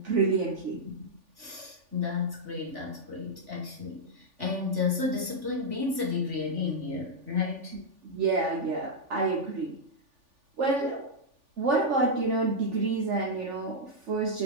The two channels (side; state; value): left; late; 3.4 ms